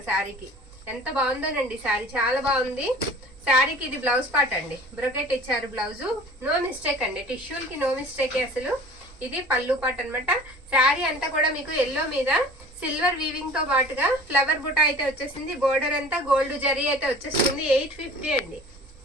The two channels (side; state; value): right; noise; rumble, 22 dB below the sound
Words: శారీకి. ఎంత బాగుందోనండి శారీ, చాలా బాగుంది. శారీకి ఇది బ్లౌజ్ పార్ట్ అండి. బ్రొకెట్ ఇచ్చారు బ్లౌజు. నో మిస్టేక్ అండి, టిష్యూలకి నో మిస్టేక్ అసలు. ఇది పళ్ళు పార్ట్ అనమాట. శారీ అంతా కూడా మీకు ఎల్లో మీద సిల్వర్ వీవింగ్ తో పాటుగా ఫ్లవర్ బుటా అయితే వచ్చేసింది. బోర్డర్ అంతా గోల్డ్ జరీ అయితే వచ్చేస్తుంది. 850 అండి.